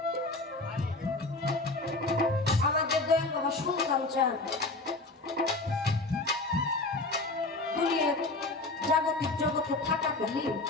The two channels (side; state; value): right; quieter; 3.1 dB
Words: আমাদের দয়াল বাবা সুলতান চান দুনিয়ার জাগতিক জগতে থাকাকালীন